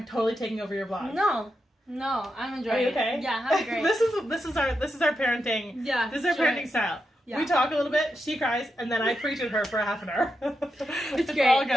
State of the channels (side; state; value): both; normal; correlation 0.86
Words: totally taking over your blog. No, I'm enjoying it. Are you okay? Yeah, I'm great. This is our parenting. Yeah, this is our parenting style. Yeah. We talk a little bit, she cries, and then I preach at her for a half an hour. It's great. All